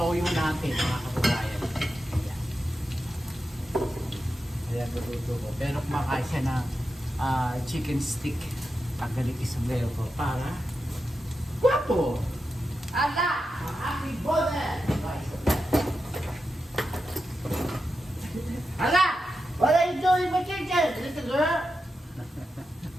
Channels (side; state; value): both; normal; correlation 0.89